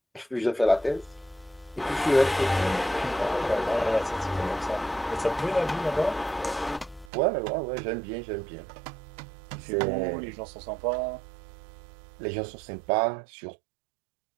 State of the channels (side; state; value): left; drops out; at 7.1 s